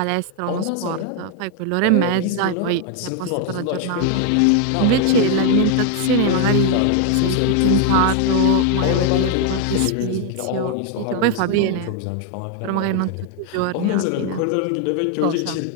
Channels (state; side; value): different; both; correlation 0.01